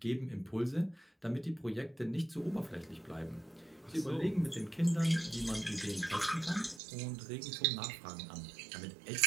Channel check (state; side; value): drops out; left; at 6.8 s